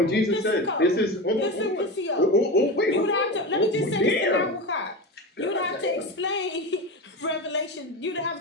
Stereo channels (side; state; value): both; normal; correlation 0.23